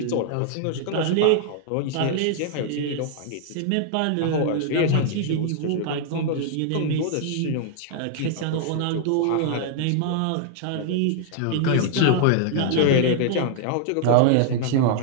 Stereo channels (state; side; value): different; both; correlation 0.00